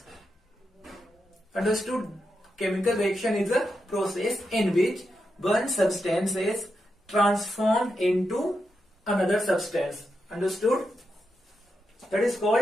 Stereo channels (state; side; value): normal; both; correlation 0.86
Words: Understood? Chemical reaction is a process in which one substance is transformed into another substance. Understood? That is